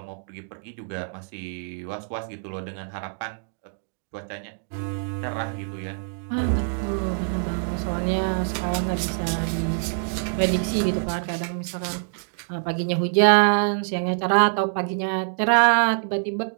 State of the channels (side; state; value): left; silent; digital silence